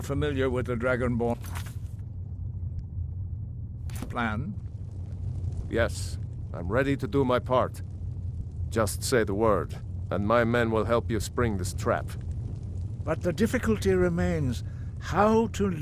familiar with the Dragonborn plan? Yes, I'm ready to do my part. Just say the word, and my men will help you spring this trap. But the difficulty remains how to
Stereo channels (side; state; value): both; identical; correlation 1.00